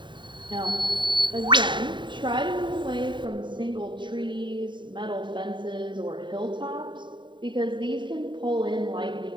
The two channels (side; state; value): left; late; 0.23 ms